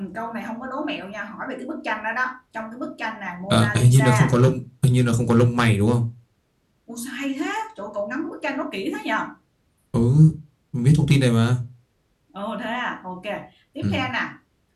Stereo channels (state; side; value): identical; both; correlation 1.00